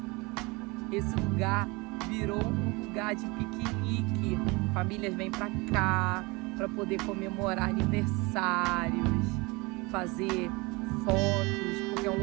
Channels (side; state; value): left; quieter; 25.5 dB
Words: Esse lugar virou um lugar de piquenique. Famílias vêm para cá para poder comemorar aniversários, fazer fotos, porque é um